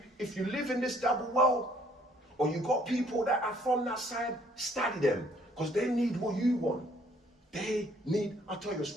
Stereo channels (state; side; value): normal; both; correlation 0.62